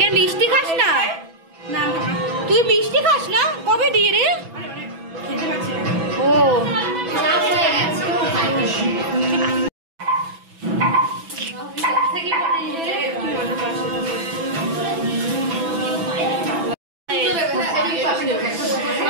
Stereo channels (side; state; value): left; late; 6.1 ms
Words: মিষ্টি খাস না? তুই মিষ্টি খাস না? কবে দিয়ে রে? ও